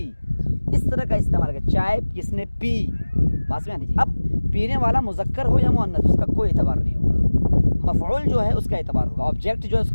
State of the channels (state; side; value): inverted; both; correlation -1.00